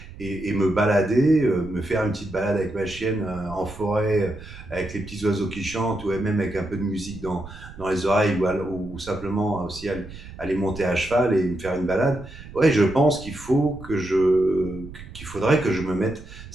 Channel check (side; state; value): right; noise; rumble, 15 dB below the sound